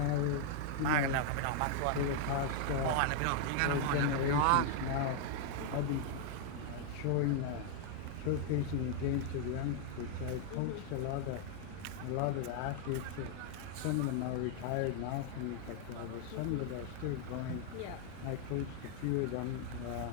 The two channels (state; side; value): different; both; correlation 0.00